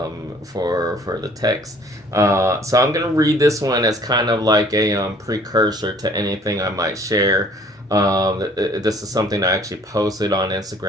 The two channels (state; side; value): normal; both; correlation 0.55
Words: for the text. So I'm gonna read this one as kind of like a precursor to anything I might share This is something I actually posted on